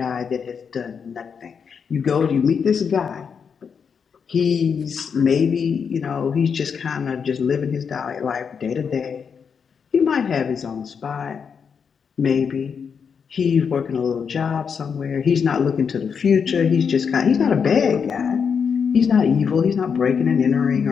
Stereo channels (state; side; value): quieter; right; 6.5 dB